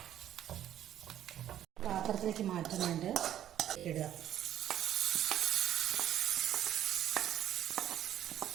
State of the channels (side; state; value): left; quieter; 11.4 dB